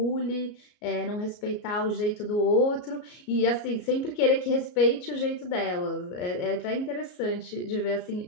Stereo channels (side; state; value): right; late; 34 ms